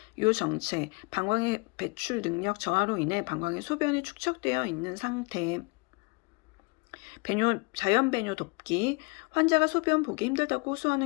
요정체, 방광의 배출 능력 저하로 인해 방광에 소변이 축적되어 있는 상태. 자연 배뇨 돕기. 환자가 소변 보기 힘들다고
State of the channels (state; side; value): quieter; right; 30.3 dB